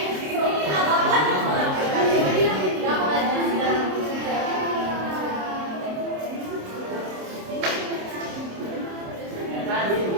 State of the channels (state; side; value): late; left; 27 ms